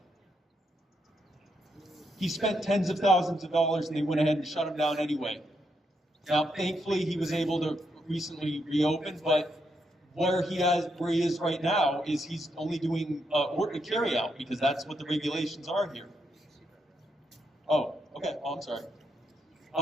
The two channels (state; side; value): normal; both; correlation 0.80